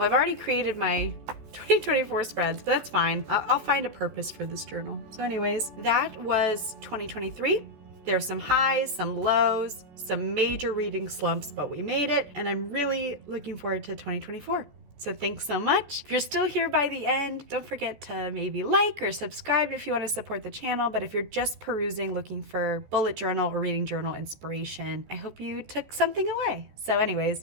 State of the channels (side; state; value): left; late; 14 ms